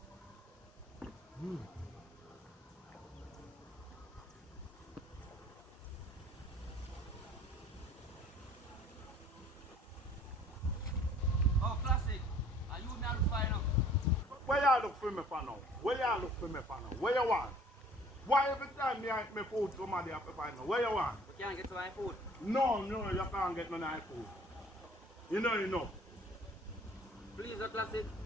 Oh, classic. Are you me look fine now? Where y'all look for me for now? Where y'all look for me for now? Where you want? Why every time me eat my food somebody have to find me? Where you want? We can't get to my food. No, you can't get none of my food. You know. Please, oh, classic.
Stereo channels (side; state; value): both; normal; correlation 0.52